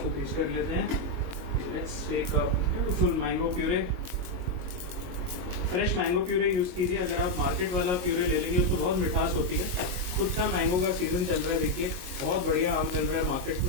टेस्ट कर लेते हैं। Let's take a beautiful mango puree. Fresh mango puree use कीजिए। अगर आप मार्केट वाला प्यूरे ले लेंगे उसको बहुत मिठास होती है। खुद का मैंगो का सीजन चल रहा है, देखिए बहुत बढ़िया आम मिल रहा है मार्केट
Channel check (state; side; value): late; left; 22 ms